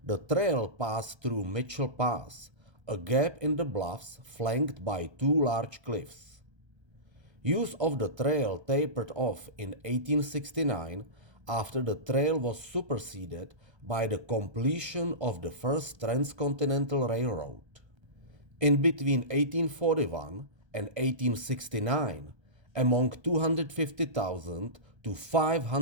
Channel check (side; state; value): left; late; 1.3 ms